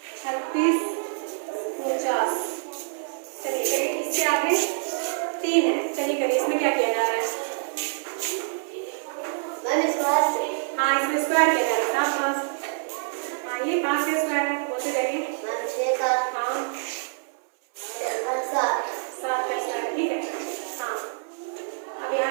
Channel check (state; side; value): silent; left; digital silence